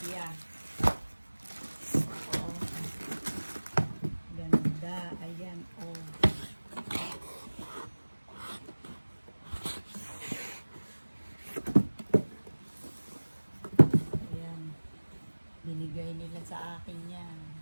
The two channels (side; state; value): both; inverted; correlation -1.00